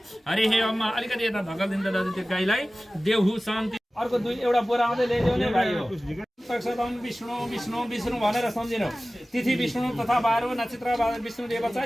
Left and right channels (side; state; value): both; normal; correlation 0.97